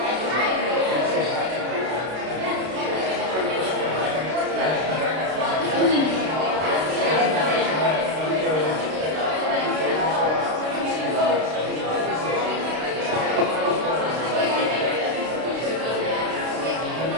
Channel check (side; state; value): left; late; 32 ms